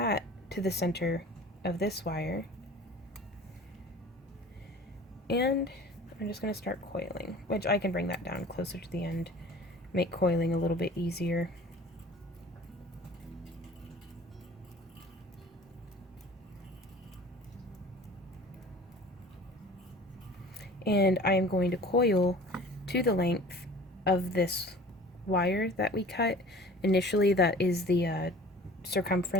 to the center of this wire. And I'm just going to start coiling, which I can bring that down closer to the end, make coiling a little bit easier. And I am going to coil to the length of this wire that we cut. Initially, that is the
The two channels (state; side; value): normal; both; correlation 0.44